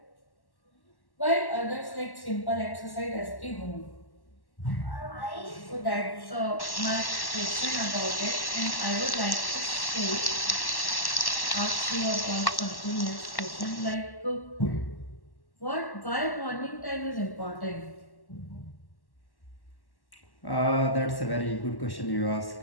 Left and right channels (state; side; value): late; right; 1.1 ms